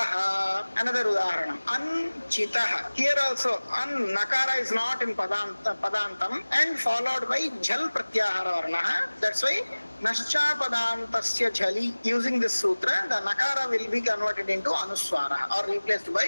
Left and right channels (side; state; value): both; inverted; correlation -1.00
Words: Another udaharanam. Anchitaha. Here also, Nakara is not in Padantam and followed by Jhal Pratyahara Varnaha. That's why Nascha Padantasya Jhali. Using this sutra, the Nakara will be converted into Anuswara or replaced